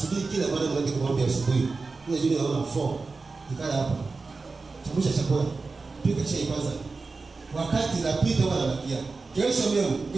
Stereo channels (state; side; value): quieter; left; 4.0 dB